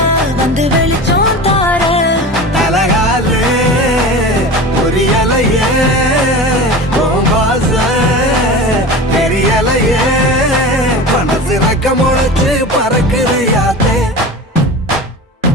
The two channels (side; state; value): both; normal; correlation 0.32